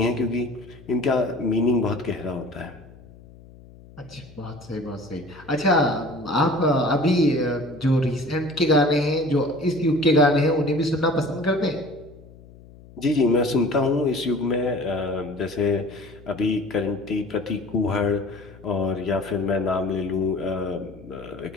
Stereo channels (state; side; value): noise; left; hum, 21 dB below the sound